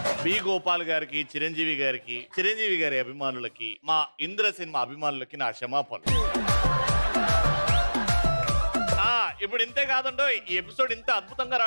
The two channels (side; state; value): both; inverted; correlation -1.00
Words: బి గోపాల్ గారికి, చిరంజీవి గారి అభిమానులకి, మా ఇంద్ర సినిమా అభిమానులకి నా క్షమాపణలు. ఇప్పుడు ఇంతే కాదండో, ఈ ఎపిసోడ్ ఇంత అద్భుతంగా